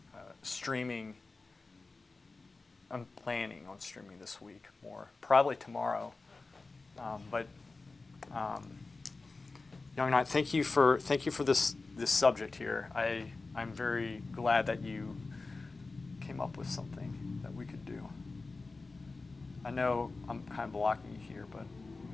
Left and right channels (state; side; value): quieter; right; 3.7 dB